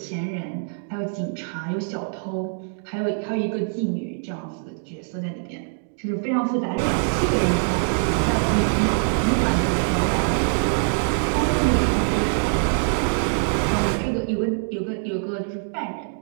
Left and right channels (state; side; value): silent; left; 62 dB below the other